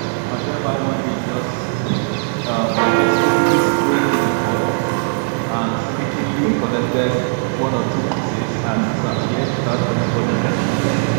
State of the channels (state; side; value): silent; left; digital silence